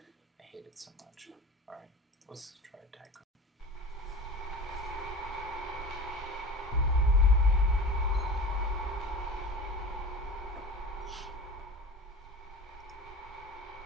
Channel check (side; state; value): both; normal; correlation 0.35